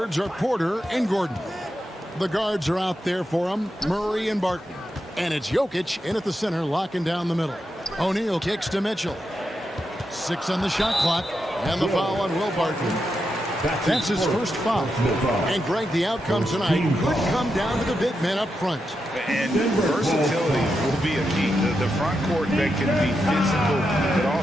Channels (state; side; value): normal; both; correlation 0.86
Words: are Porter and Gordon. The guards are out there for them, Murray and Barton. And it's Jokic in at the center, locking down the middle. O'Neal kicks to Mitchell. 6 on the shot clock, and the foul on Will Barton. That's his first foul. And Greg, the outcome tonight could come down to the big men up front. And versatility will be a key. The front court that can be physical, but